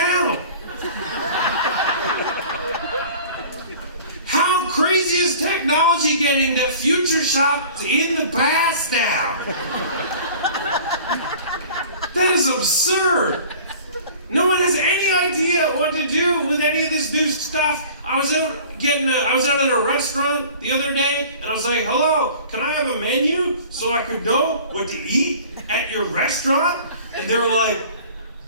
How crazy is technology getting that Future Shop's in the past now? That is absurd. No one has any idea what to do with any of this new stuff. I was out at a restaurant the other day and I was like, hello, can I have a menu so I could know what to eat at your restaurant? And they were like,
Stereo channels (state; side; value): inverted; both; correlation -0.45